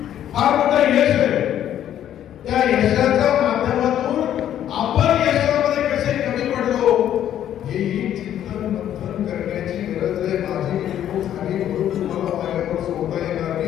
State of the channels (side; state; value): right; quieter; 10.9 dB